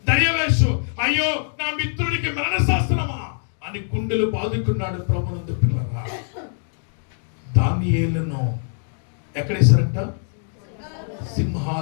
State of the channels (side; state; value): right; silent; digital silence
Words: దర్యావేషు. అయ్యో నా మిత్రుడికి మరణశాసనమా అని గుండెలు బాదుకున్నాడు. ప్రభునందు పిల్లరా, దానియేలును ఎక్కడేశారంట?